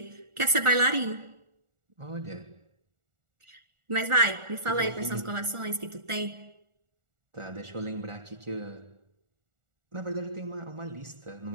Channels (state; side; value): late; left; 1.4 ms